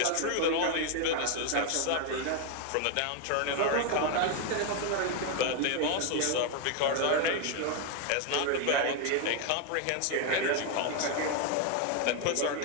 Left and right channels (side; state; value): both; different; correlation 0.01